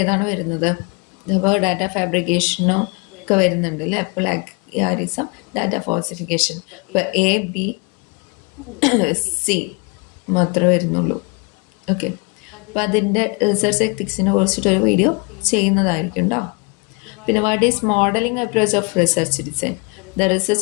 വരുന്നത്? അപ്പോൾ ഡാറ്റ ഫാബ്രിക്കേഷനും ഒക്കെ വരുന്നുണ്ട് അല്ലേ, പ്ലാഗിയറിസം, ഡാറ്റ ഫാൾസിഫിക്കേഷൻ. ഇപ്പോൾ എ, ബി, സി മാത്രമേ വരുന്നുള്ളൂ. ഓക്കെ, അപ്പോൾ അതിൻ്റെ റിസർച്ച് എത്തിക്സിനെ കുറിച്ചിട്ടൊരു വീഡിയോ ചെയ്യുന്നതായിരിക്കും കേട്ടോ. പിന്നെ what is modelling approach of research design? The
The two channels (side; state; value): right; quieter; 31.7 dB